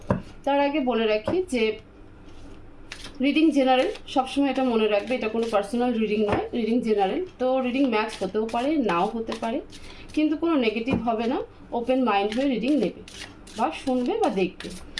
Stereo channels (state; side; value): identical; both; correlation 1.00